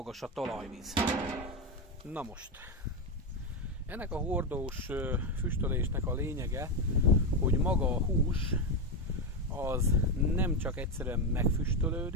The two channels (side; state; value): both; normal; correlation 0.10